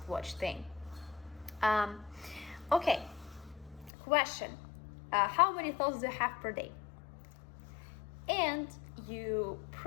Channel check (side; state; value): right; drops out; at 3.9 s